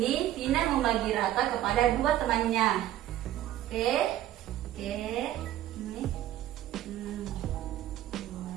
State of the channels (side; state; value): left; quieter; 13.2 dB